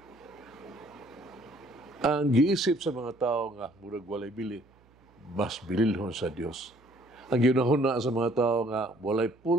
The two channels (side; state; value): right; noise; hum, 30 dB below the sound